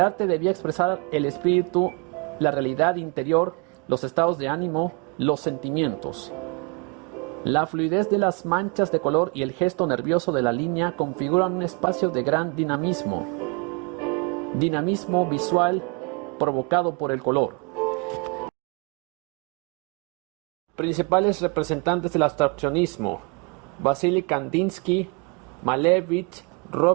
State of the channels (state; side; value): quieter; left; 32.3 dB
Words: debía expresar el espíritu, la realidad interior, los estados de ánimo, los sentimientos. La fluidez de las manchas de color y el gesto nervioso de la línea configuran un espacio de gran dinamismo. Dinamismo visual provocado por el color. Principales representantes del abstraccionismo: Vasily Kandinsky, Malevich,